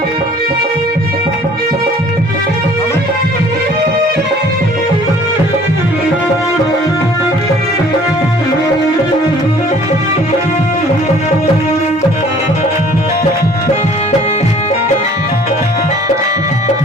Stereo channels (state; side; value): normal; both; correlation 0.53